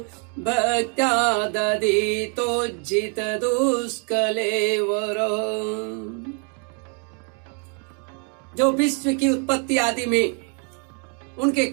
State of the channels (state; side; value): quieter; left; 38.9 dB